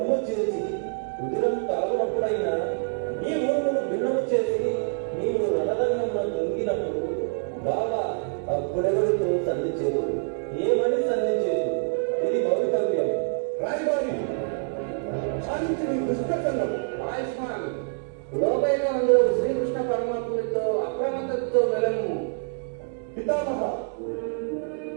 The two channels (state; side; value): silent; left; digital silence